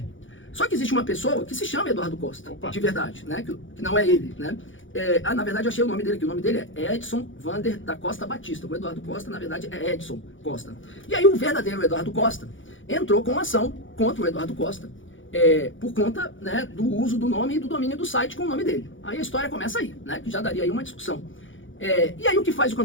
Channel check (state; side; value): late; right; 0.56 ms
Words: Só que existe uma pessoa que se chama Eduardo Costa, Opa. de verdade, né, que não é ele, né. Na verdade, eu achei o nome dele aqui. O nome dele é Edson Vander da Costa Batista. O Eduardo Costa, na verdade, é Edson Costa. E aí o verdadeiro Eduardo Costa entrou com uma ação contra o Eduardo Costa, por conta, né, do uso do nome e do domínio do site com o nome dele. Aí a história começa aí, né, que já daria aí uma discussão. E aí o que faz o